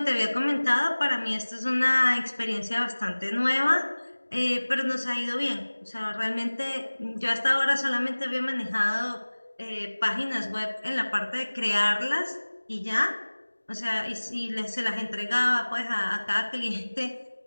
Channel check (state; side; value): inverted; both; correlation -1.00